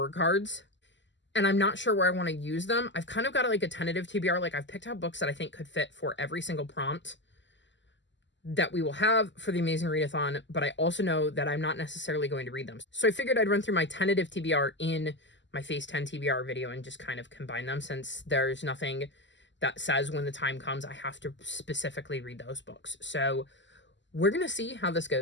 cards, and I'm not sure where I want to use them, I've kind of got, like, a tentative TBR. Like, I've picked out books that I think could fit for every single prompt that we will have for the Amazing Readathon, but I also know that I'm not necessarily going to read them. So I figured I'd run through my tentative TBR in my Phase 10 TBR video and just kind of combine them, since there's nothing that says when the time comes I have to specifically read those books. So we're going to see how this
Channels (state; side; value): late; right; 0.54 ms